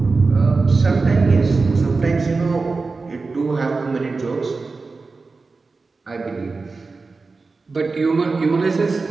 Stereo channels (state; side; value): quieter; left; 4.0 dB